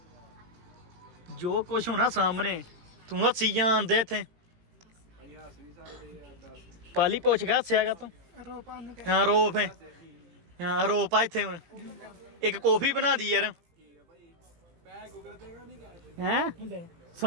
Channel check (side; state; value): left; late; 18 ms